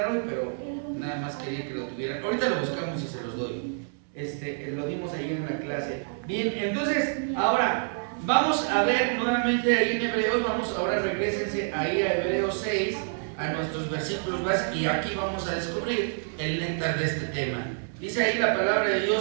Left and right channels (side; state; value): left; silent; 60 dB below the other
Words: hoy, pero nada más quería que lo tuvieran. Ahorita lo buscamos y se los doy. Lo dimos ahí en la clase. Bien, entonces, ahora vamos a ver nuevamente ahí en Hebreos. Ahora regrésense ahí a Hebreos 6, a nuestros versículos básicos, y aquí vamos a descubrir el néctar de este tema. Dice ahí la palabra de